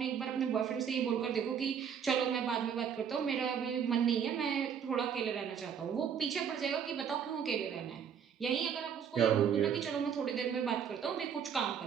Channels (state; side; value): quieter; left; 7.8 dB